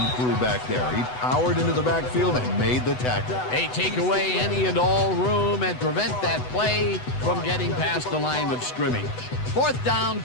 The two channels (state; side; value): late; right; 8.0 ms